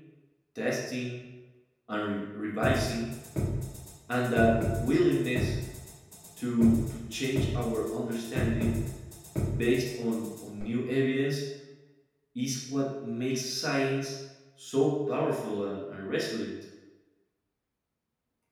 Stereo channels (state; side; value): identical; both; correlation 1.00